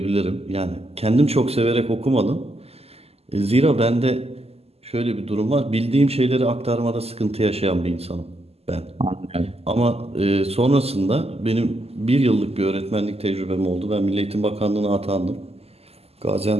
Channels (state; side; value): late; left; 0.29 ms